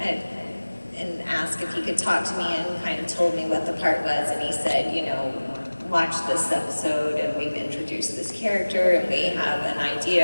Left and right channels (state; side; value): inverted; both; correlation -1.00